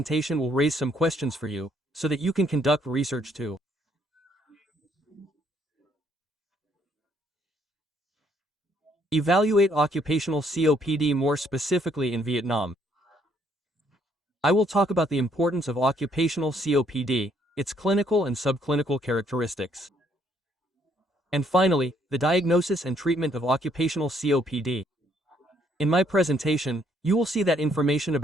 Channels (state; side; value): normal; both; correlation 0.68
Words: will raise some questions for you, so that you can conduct research too. Evaluate occupational COPD more specifically in Vietnam. I will talk about the importance of occupational COPD, its clinical and subclinical characteristics. And finally, the diagnosis and treatment of occupational COPD. In my presentation, you will see that information